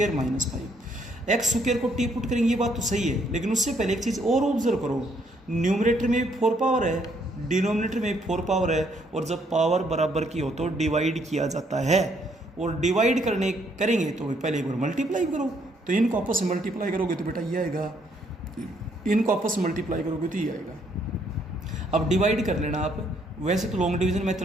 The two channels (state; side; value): normal; both; correlation 0.69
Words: - 5। x² को t पुट करेंगे, ये बात तो सही है, लेकिन उससे पहले एक चीज़ और ऑब्जर्व करो, न्यूमरेटर में भी 4 पावर है, डिनोमिनेटर में भी 4 पावर है, और जब पावर बराबर की हो तो डिवाइड किया जाता है, और डिवाइड करेंगे तो पहले एक बार मल्टीप्लाई करो, तो इनको आपस में मल्टीप्लाई करोगे तो बेटा ये आएगा, इनको आपस में मल्टीप्लाई करोगे तो ये आएगा। अब डिवाइड कर लेना आप, वैसे तो लॉन्ग डिवीजन